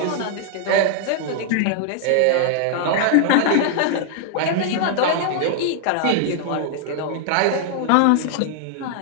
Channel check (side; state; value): both; different; correlation 0.00